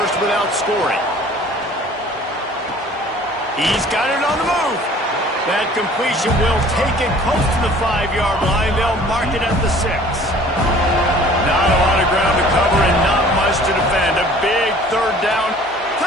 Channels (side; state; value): both; normal; correlation 0.50